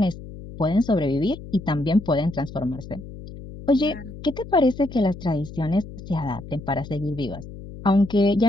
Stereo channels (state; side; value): noise; left; hum, 14 dB below the sound